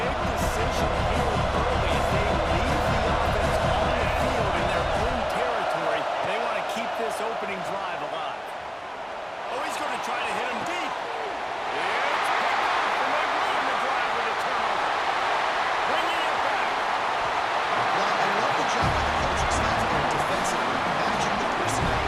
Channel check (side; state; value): both; identical; correlation 1.00